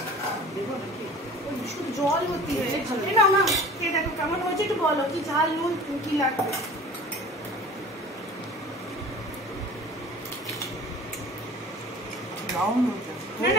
শুধু জল ভর্তি হয়ে না। না কে দেখো কেমন হয়েছে, একটু বলো কি ঝাল নুন কি লাগবে। না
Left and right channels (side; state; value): both; normal; correlation 0.43